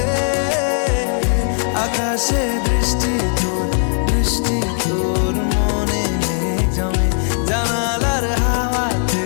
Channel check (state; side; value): silent; right; 67 dB below the other